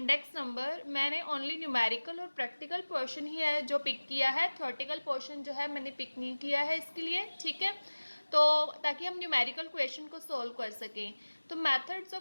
number, मैंने ओनली न्यूमेरिकल और प्रैक्टिकल पोर्शन ही है जो पिक किया है। थ्योरेटिकल पोर्शन जो है मैंने पिक नहीं किया है इसके लिए, ठीक है, तो ताकि हम न्यूमेरिकल क्वेश्चन को सोल्व कर सकें। तो methods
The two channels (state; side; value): inverted; both; correlation -1.00